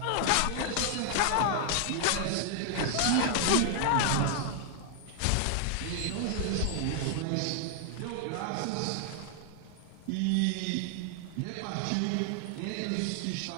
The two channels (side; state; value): both; different; correlation 0.00